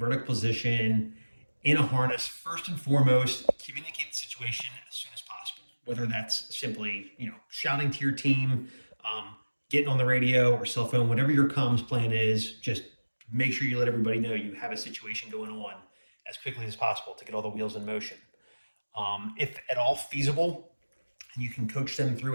position in a harness, first and foremost, communicate the situation as soon as possible. Whether that's simply, shouting to your team, getting on the radio or cell phone, whatever your comms plan is, just make sure you let everybody know you have a situation going on as quickly as possible to get all the wheels in motion. If at all feasible, and you can coach them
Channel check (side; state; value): both; inverted; correlation -1.00